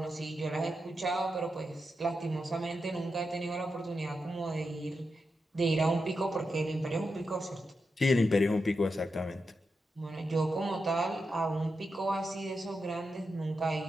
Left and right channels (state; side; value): normal; both; correlation 0.87